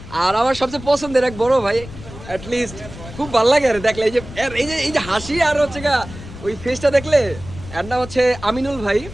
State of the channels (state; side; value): noise; left; rumble, 14 dB below the sound